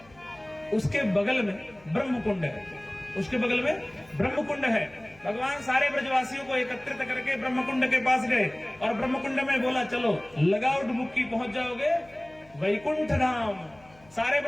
उसके बगल में ब्रह्मकुंड है, उसके बगल में ब्रह्मकुंड है। भगवान सारे ब्रजवासियों को एकत्रित करके ब्रह्मकुंड के पास गए और ब्रह्मकुंड में बोला, चलो लगाओ डुबकी, पहुंच जाओगे वैकुंठ धाम। सारे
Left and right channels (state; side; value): noise; left; hum, 27 dB below the sound